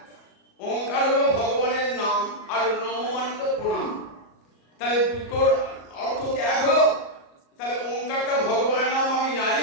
ওঙ্কার হলো ভগবানের নাম আর নম মানে তো প্রণাম। তাহলে দুটোর অর্থ কি এক হলো? তাহলে ওঙ্কারটা ভগবানের নাম, আমি নারী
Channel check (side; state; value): right; late; 37 ms